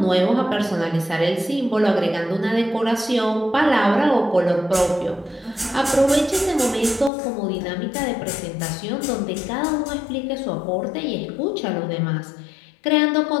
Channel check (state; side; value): drops out; right; at 7.1 s